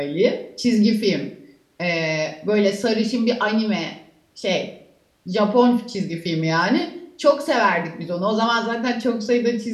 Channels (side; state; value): both; identical; correlation 1.00